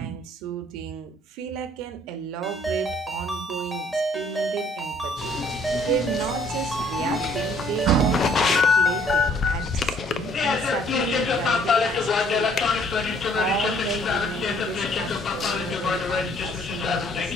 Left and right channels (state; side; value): normal; both; correlation 0.61